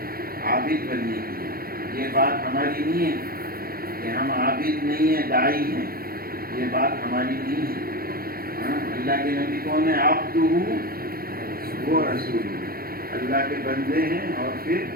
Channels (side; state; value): left; late; 0.43 ms